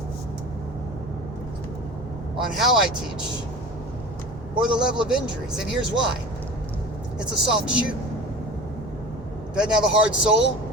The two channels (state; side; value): normal; both; correlation 0.37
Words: on how I teach or the level of injuries. And here's why. It's a soft shoe. Doesn't have a hard sole.